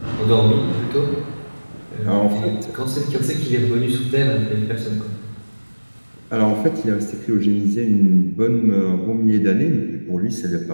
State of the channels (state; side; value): inverted; both; correlation -1.00